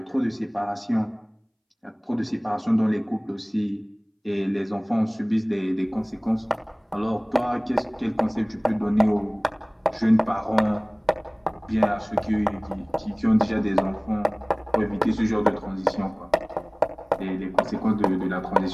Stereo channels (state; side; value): identical; both; correlation 1.00